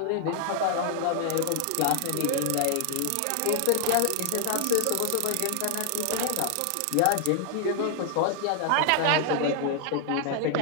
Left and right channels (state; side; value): different; both; correlation 0.00